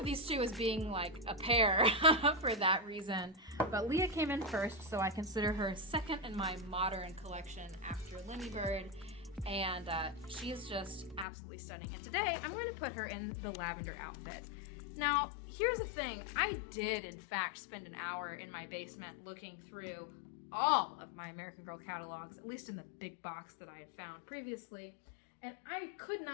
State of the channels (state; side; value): drops out; right; at 11.2 s